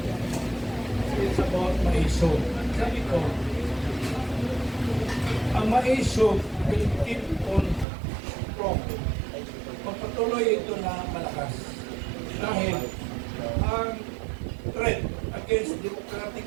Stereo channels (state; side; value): drops out; left; at 7.9 s